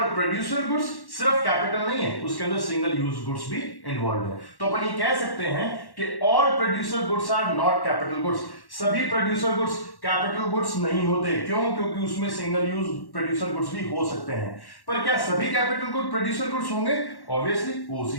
प्रोड्यूसर गुड्स सिर्फ कैपिटल नहीं है, उसके अंदर सिंगल यूज गुड्स भी इन्वॉल्व है। तो अपन ये कह सकते हैं कि all producer goods are not capital goods. सभी प्रोड्यूसर गुड्स कैपिटल गुड्स नहीं होते। क्यों? क्योंकि उसमें सिंगल यूज प्रोड्यूसर गुड्स भी हो सकते हैं। पर क्या सभी कैपिटल गुड प्रोड्यूसर गुड्स होंगे? ऑब्वियसली वो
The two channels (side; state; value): right; late; 1.1 ms